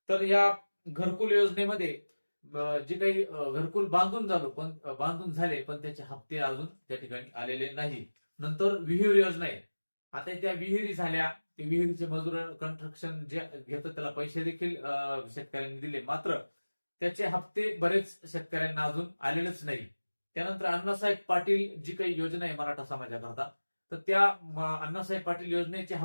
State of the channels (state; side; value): inverted; both; correlation -1.00